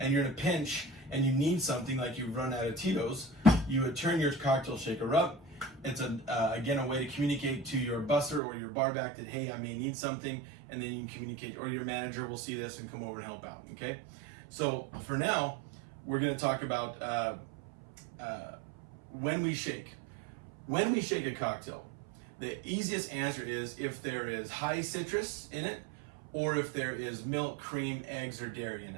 you're in a pinch and you need something, like you've run out of Tito's, you would turn your cocktail shaker up. It's again a way to communicate to your busser or your bar back that, hey, I may need something, and then you can communicate, or your manager will see this and come over and help out, okay? So for now, we're gonna talk about when we shake. When we shake a cocktail, the easiest answer is if there is high citrus in it, or if there is milk, cream, eggs, or dairy in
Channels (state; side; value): drops out; left; at 8.4 s